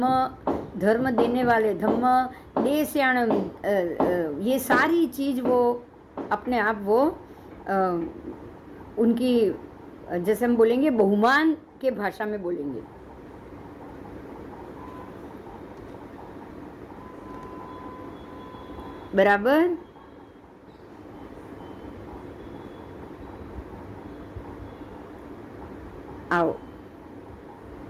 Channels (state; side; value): identical; both; correlation 1.00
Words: धर्म देने वाले, धम्म देस्याणम, ये सारी चीज वो अपने आप वो उनकी, जैसे हम बोलेंगे बहुमान के भाषा में बोलेंगे। बराबर? आओ,